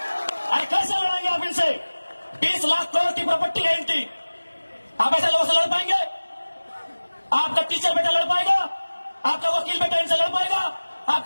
अरे कैसे लड़ेंगे आप इनसे? 20 लाख करोड़ की प्रॉपर्टी है इनकी। आप ऐसे लोगों से लड़ पाएंगे? आपका टीचर बेटा लड़ पाएगा? आपका वकील बेटा इनसे लड़ पाएगा?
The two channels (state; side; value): inverted; both; correlation -1.00